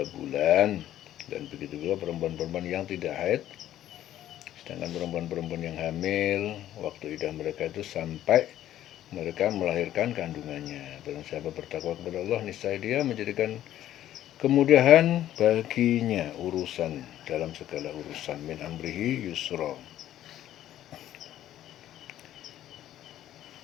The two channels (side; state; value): right; quieter; 12.4 dB